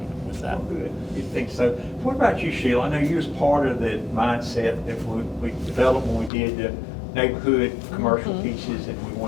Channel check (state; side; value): drops out; right; at 6.3 s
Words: with that. Oh, good. You think so? What about you, Sheilah? I know you was part of the mindset that we developed when we did the neighborhood commercial pieces, and we